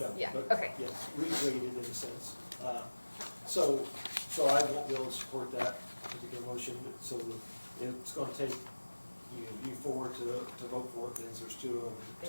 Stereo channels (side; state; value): both; inverted; correlation -1.00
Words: know, yeah, but okay. yes, regraded in a sense. So I won't be able to support that particular motion, so it's gonna take you four to vote for it, because there's two